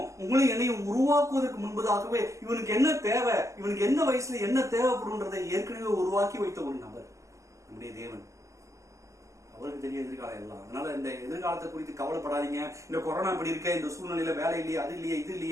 உங்களையும் என்னையும் உருவாக்குவதற்கு முன்பதாகவே இவனுக்கு என்ன தேவை, இவனுக்கு என்ன வயசுல என்ன தேவைப்படும்ன்றதை ஏற்கனவே உருவாக்கி வைத்த ஒரு நபர் நம்முடைய தேவன். அவருக்கு தெரியும் எதிர்காலம் எல்லாம். அதனால இந்த எதிர்காலத்தை குறித்து கவலைப்படாதீங்க. இந்த கொரோனா இப்படி இருக்க, இந்த சூழ்நிலையில வேலை இல்லையே, அது இல்லையே, இது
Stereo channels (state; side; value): late; left; 0.15 ms